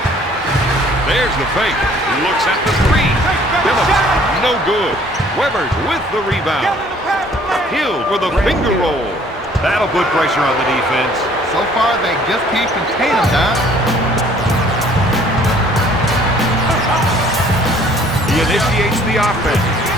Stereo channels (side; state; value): both; normal; correlation 0.57